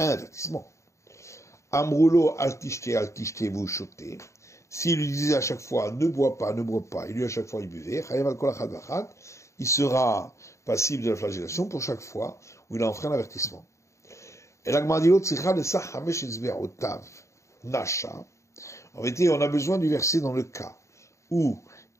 avertissement. Amroulo altishte, vous chotez. S'il lui disait à chaque fois, ne bois pas, et lui à chaque fois il buvait, il sera passible de la flagellation pour chaque fois où il a enfreint l'avertissement. Et la Gemara dit l'autre, Nasha. En vérité, on a besoin du verset dans le cas où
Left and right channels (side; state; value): right; late; 0.14 ms